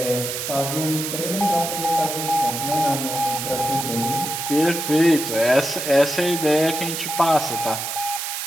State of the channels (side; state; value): right; noise; hiss, 4 dB below the sound